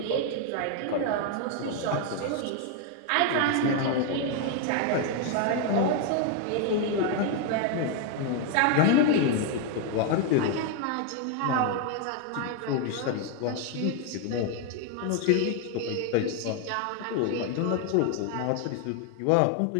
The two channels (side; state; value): both; different; correlation 0.01